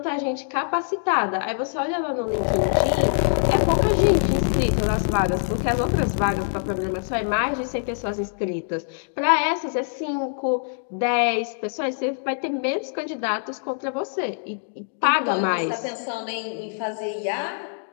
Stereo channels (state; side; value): silent; right; digital silence